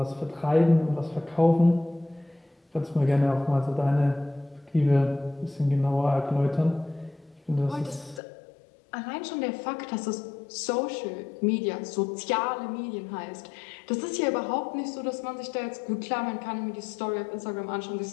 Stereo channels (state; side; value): drops out; right; at 8.2 s